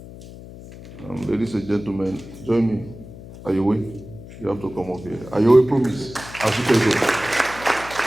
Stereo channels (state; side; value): noise; left; hum, 16 dB below the sound